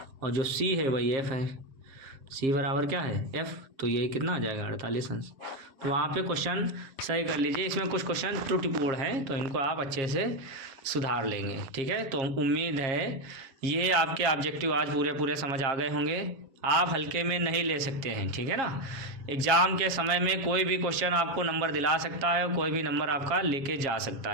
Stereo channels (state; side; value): late; left; 7.4 ms